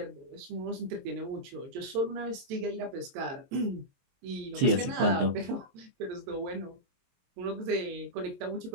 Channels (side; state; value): left; late; 22 ms